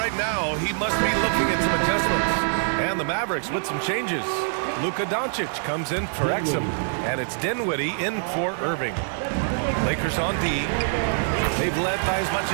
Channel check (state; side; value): silent; left; 62 dB below the other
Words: now he must be looking at some adjustments. And the Mavericks with some changes. Luka Doncic comes in for Exum, and it's Dinwiddie in for Irving. Lakers on D. They've led by as much